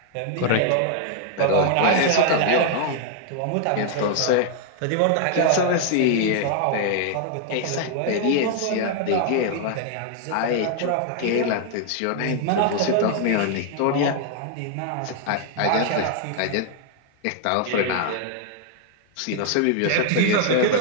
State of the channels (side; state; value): both; different; correlation 0.00